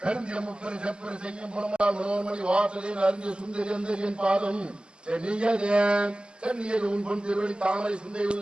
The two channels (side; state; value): left; late; 0.049 ms